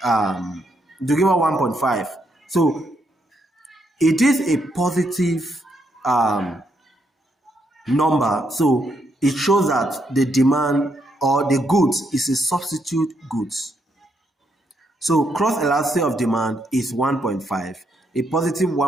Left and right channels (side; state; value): both; normal; correlation 0.77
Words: It will give us 1.5. So it is a positive number. So it shows that the demand or the goods is a substitute goods. So cross elasticity of demand is 1.5, a positive